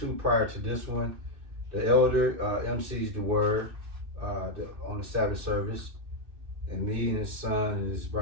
prior to this one, the elder MCs the word on the Sabbath service, and me and his son and his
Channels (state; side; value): late; left; 2.6 ms